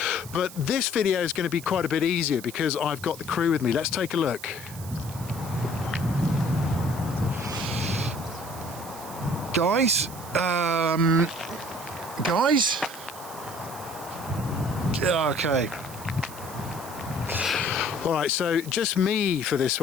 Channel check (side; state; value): right; noise; hiss, 15 dB below the sound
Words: But this video is going to be quite a bit easier because I've got the crew with me. Let's take a look. Guys, okay. All right, so just me for this